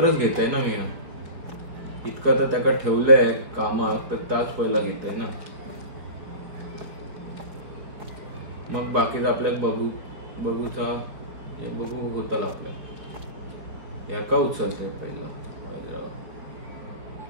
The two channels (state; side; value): late; left; 4.9 ms